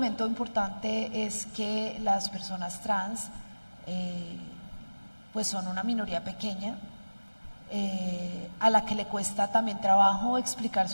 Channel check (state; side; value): inverted; both; correlation -1.00